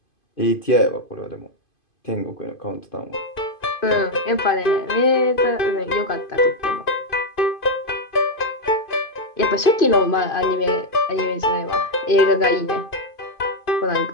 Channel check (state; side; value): late; right; 2.5 ms